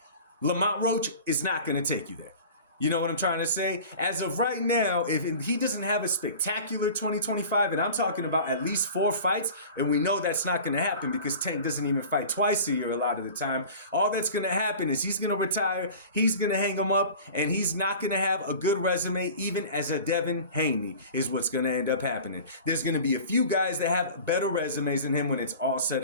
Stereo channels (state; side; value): inverted; both; correlation -0.39